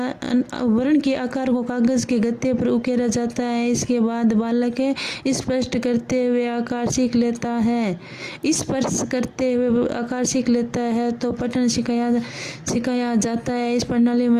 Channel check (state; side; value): identical; both; correlation 1.00